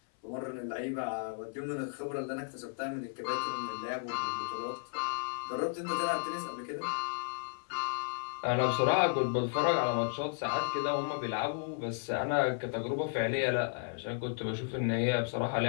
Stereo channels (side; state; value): right; silent; 55 dB below the other